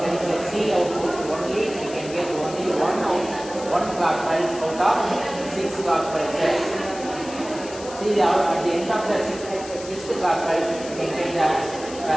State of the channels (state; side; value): noise; left; hiss, 15 dB below the sound